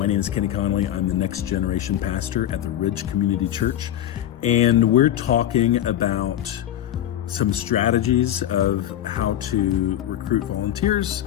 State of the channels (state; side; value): quieter; right; 11.9 dB